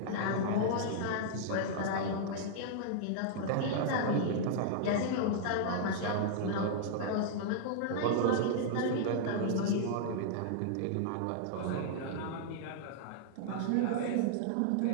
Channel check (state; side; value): different; both; correlation -0.01